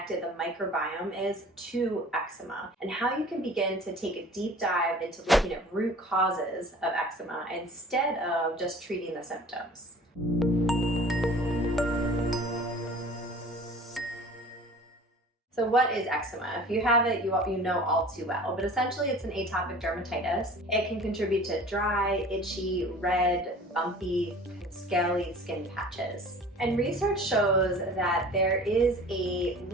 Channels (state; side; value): normal; both; correlation 0.44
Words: the microbiome is to eczema and how you can begin to take a deep dive into looking at root causes of eczema instead of just treating the symptoms? So what is eczema? If you have it, you know all too well, but essentially it's an atopic dermatitis. It can contribute to dry, itchy, red, bumpy, scaly skin patches. And research shows that there is a